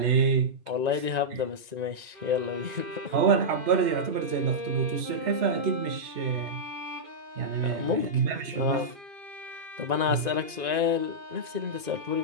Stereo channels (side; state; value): left; late; 1.9 ms